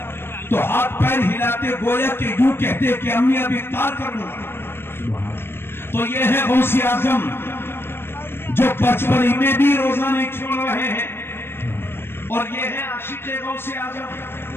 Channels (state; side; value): late; right; 0.11 ms